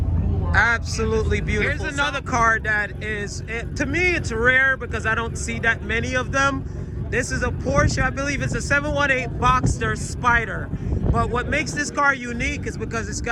Absolutely beautiful. Here's another car that is, to me, it's rare because I don't see that many of them. This is a Porsche, I believe it's a 718 Boxster Spider. But what makes this car unique is because it's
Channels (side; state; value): both; identical; correlation 1.00